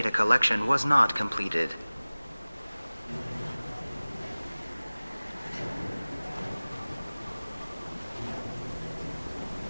collection was not completed.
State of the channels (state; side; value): inverted; both; correlation -1.00